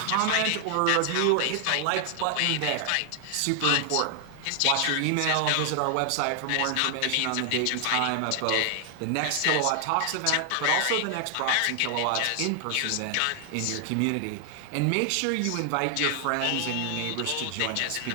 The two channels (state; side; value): different; both; correlation 0.00